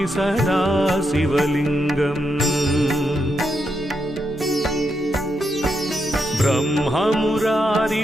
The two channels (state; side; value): normal; both; correlation 0.82